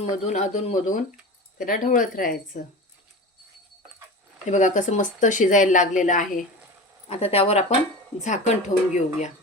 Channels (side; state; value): both; normal; correlation 0.31